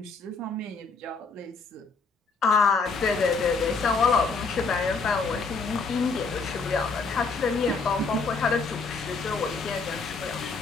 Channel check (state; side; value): quieter; right; 4.3 dB